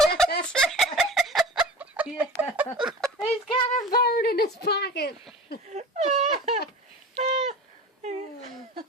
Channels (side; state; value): both; normal; correlation 0.35